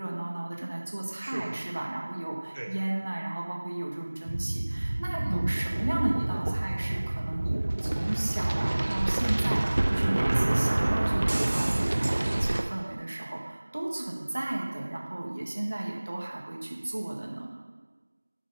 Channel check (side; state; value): both; inverted; correlation -1.00